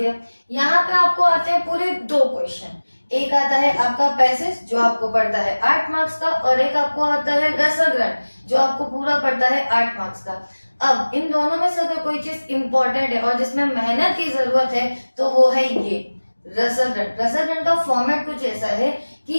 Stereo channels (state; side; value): inverted; both; correlation -1.00